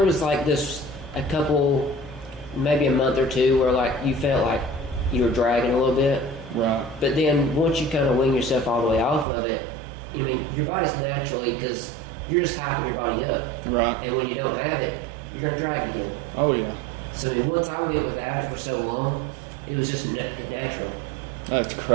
was this a couple, maybe a month or two where you felt like you were dragging a little bit. Right. But then once you kind of wing yourself all the way off of it, your body's naturally, because you're just hyping your body up. Right. And when you don't have it, you're going to drag it again. Oh, yeah. So, once I went without it for so long, it was just natural. That's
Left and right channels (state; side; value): drops out; left; at 9.2 s